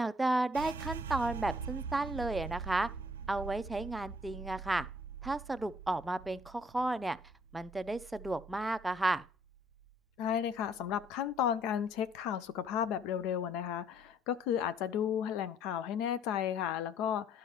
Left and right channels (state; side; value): normal; both; correlation 0.62